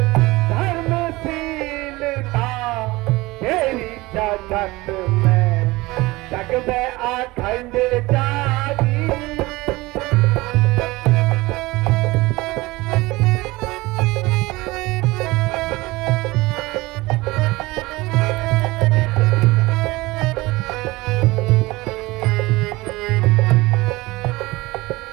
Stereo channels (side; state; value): left; quieter; 21.0 dB